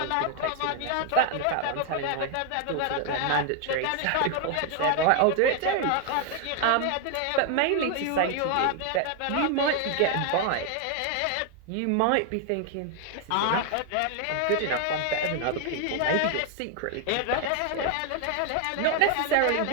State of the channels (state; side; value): different; both; correlation 0.00